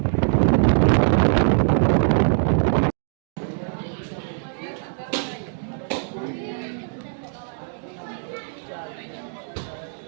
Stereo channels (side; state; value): left; silent; digital silence